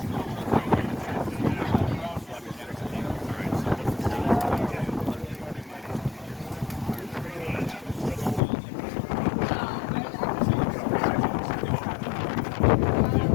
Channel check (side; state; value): right; drops out; at 8.4 s